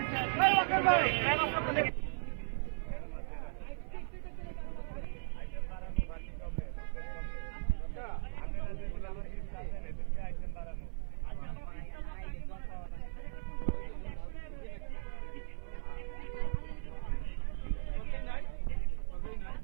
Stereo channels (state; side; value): silent; left; 53 dB below the other